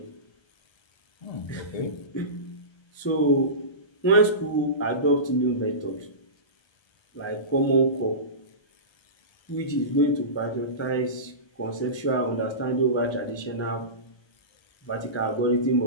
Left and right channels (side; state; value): right; late; 1.3 ms